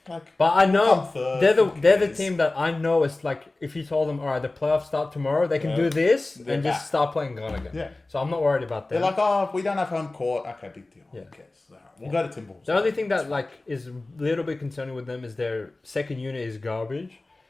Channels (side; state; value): right; quieter; 3.0 dB